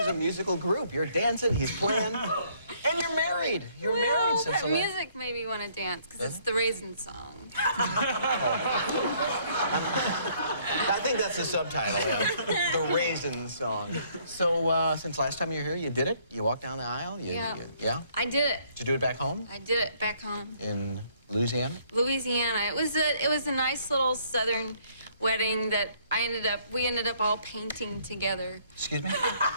a musical group. You're dancing, he's playing, and you're married. You're married since the music made me want to dance because it's the Raisin song. I think that's the subtitle, yeah. The Raisin song. So, since last time you were here, you did it? You walked down the aisle? Yeah? I did it. Did you do it back home? I did it back home. In Louisiana? Louisiana. It was a nice little southern wedding that we ended up all painting together. Excuse me?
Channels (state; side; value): inverted; both; correlation -0.64